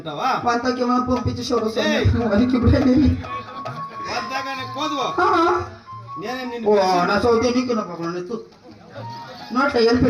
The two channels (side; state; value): both; identical; correlation 1.00